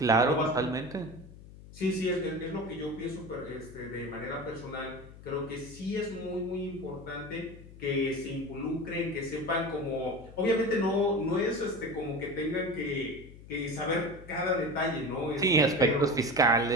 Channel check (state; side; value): noise; left; hum, 18 dB below the sound